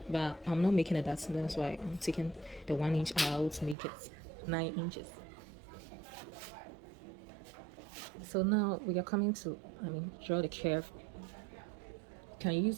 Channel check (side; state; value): left; drops out; at 3.8 s